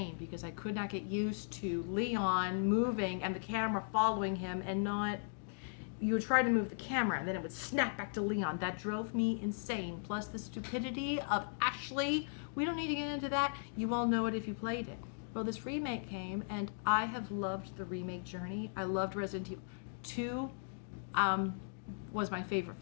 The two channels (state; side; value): silent; right; digital silence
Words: because I could not get used to Leon moving and the camera following him and not... You would try to move the camera and then it would snap back to Leon. That drove me insane. Plus the stupidity of Ashley. We don't need to get into that. You all know it if you played it. Well, this remake came and I have loved the remake journey. I loved Resident Evil 2. Was my favorite